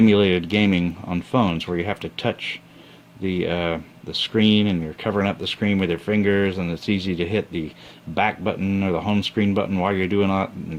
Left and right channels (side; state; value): both; identical; correlation 1.00